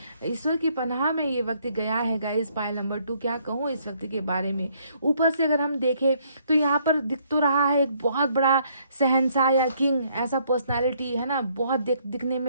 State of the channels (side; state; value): both; inverted; correlation -0.67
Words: ईश्वर की पनाह में ये व्यक्ति गया है। गाइस, पाइल नंबर 2, क्या कहूँ इस व्यक्ति के बारे में। ऊपर से अगर हम देखें तो यहाँ पर दिख तो रहा है एक बहुत बड़ा शहंशाह या किंग, ऐसा पर्सनालिटी है ना, बहुत दिखने